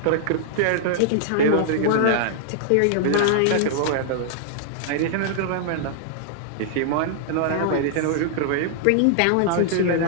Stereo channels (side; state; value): both; different; correlation -0.01